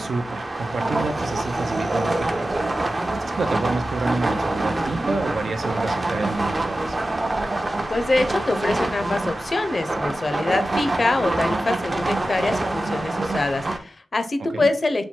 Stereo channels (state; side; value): normal; both; correlation 0.93